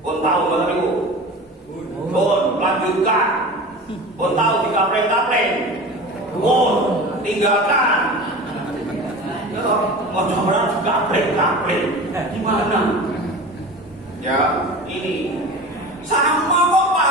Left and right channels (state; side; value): normal; both; correlation 0.34